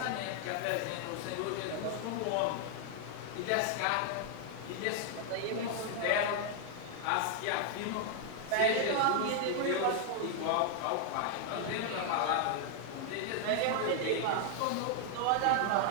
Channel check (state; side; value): different; both; correlation 0.00